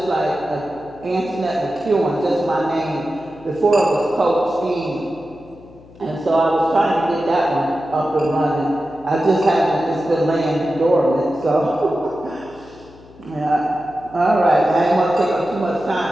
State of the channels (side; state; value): left; noise; hum, 23 dB below the sound